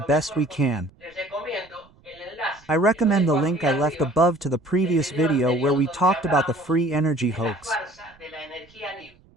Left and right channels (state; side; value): noise; right; rumble, 29 dB below the sound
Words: best we can. I recommend the link I left above to the previous video where we talked about the free energy hoax.